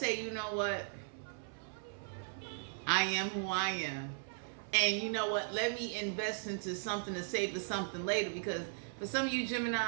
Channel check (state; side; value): silent; left; 53 dB below the other